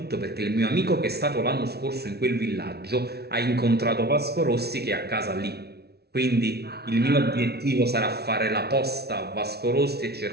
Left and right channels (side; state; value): left; late; 0.47 ms